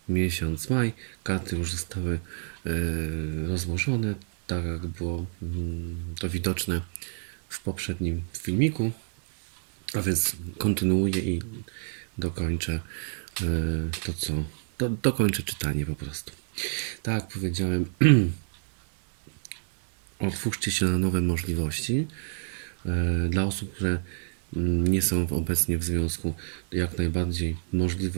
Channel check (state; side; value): silent; left; digital silence